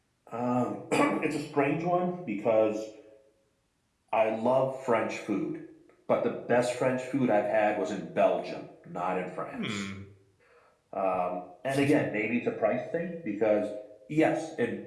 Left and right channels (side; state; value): both; identical; correlation 1.00